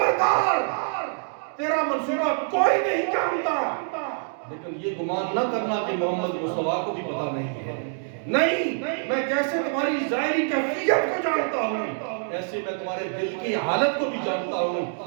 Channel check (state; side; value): silent; left; digital silence